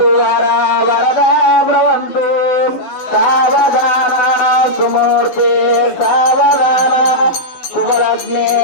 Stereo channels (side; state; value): right; late; 11 ms